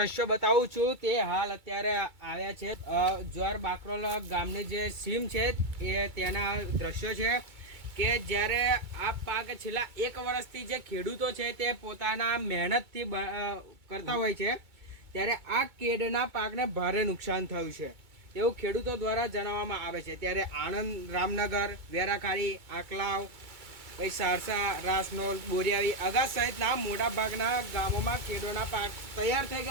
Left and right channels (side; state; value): left; late; 2.2 ms